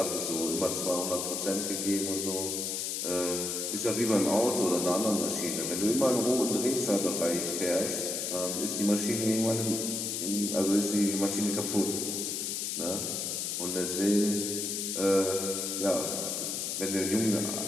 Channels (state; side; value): noise; left; hiss, 2 dB below the sound